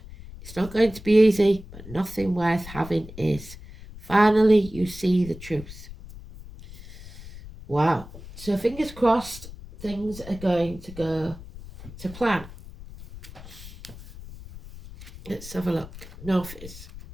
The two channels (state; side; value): noise; left; rumble, 15 dB below the sound